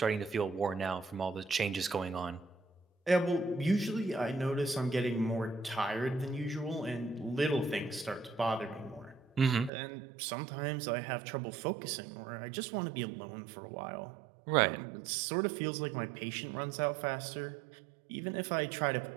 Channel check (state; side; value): drops out; left; at 9.7 s